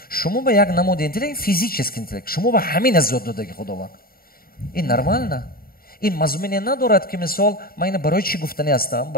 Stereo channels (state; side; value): late; right; 0.43 ms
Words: Шумо ба як намуди интеллект, физический интеллект, шумо ба ҳамина зиёд додагӣ худованд. Ин нормально. ин мазмуне надорад ки мисол ман ина барои чӣ гуфтанӣ ҳастам?